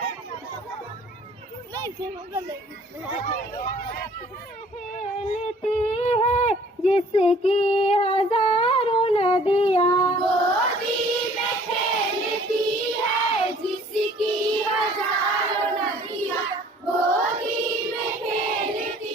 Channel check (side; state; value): both; normal; correlation 0.54